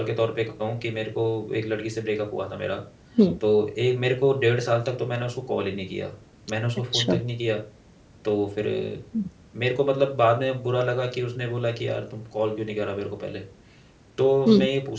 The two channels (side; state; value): both; identical; correlation 1.00